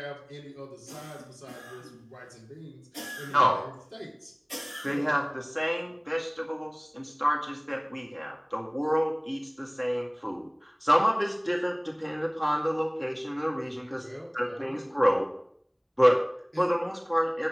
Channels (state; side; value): identical; both; correlation 1.00